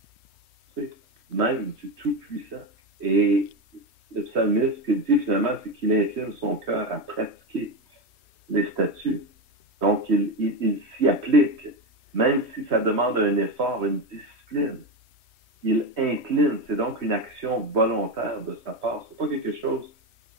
même du Tout-Puissant. Et le psalmiste, ce qu'il dit finalement, c'est qu'il incline son cœur à pratiquer les statuts. Donc, il s'y applique, même si ça demande un effort, une discipline. Il incline, c'est donc une action volontaire de sa part. Ce n'est pas quelque chose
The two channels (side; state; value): left; late; 3.1 ms